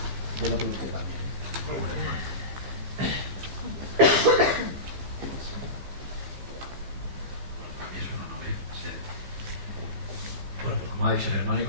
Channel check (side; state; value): left; late; 15 ms